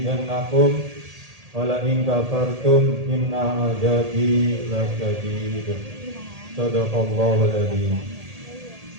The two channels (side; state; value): left; late; 1.8 ms